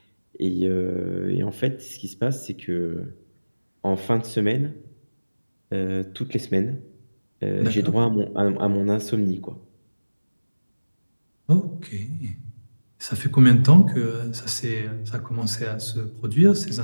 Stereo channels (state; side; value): inverted; both; correlation -1.00